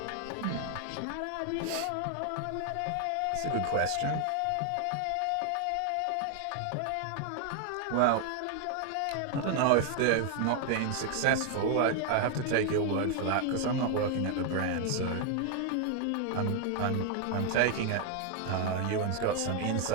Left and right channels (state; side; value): different; both; correlation 0.00